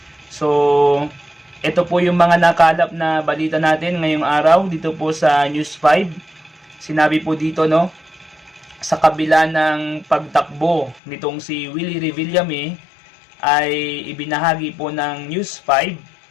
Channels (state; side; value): drops out; right; at 11.0 s